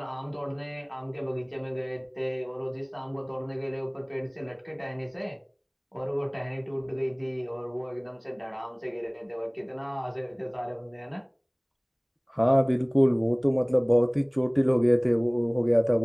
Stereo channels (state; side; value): identical; both; correlation 1.00